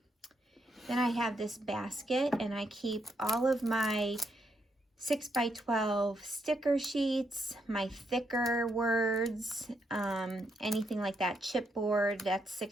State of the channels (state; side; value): normal; both; correlation 0.78